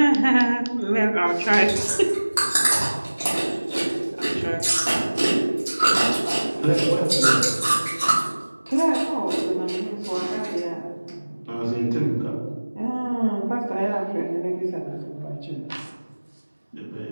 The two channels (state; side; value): inverted; both; correlation -1.00